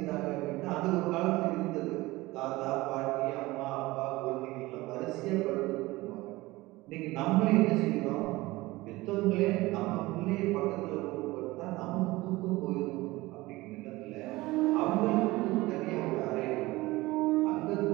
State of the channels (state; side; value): quieter; left; 19.9 dB